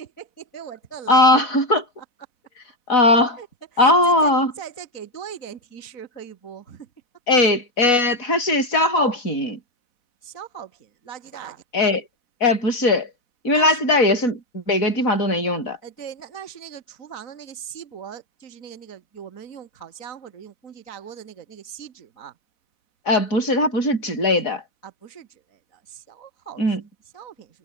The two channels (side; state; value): right; late; 4.1 ms